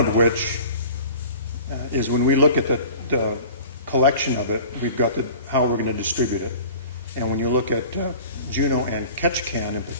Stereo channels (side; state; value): both; inverted; correlation -0.43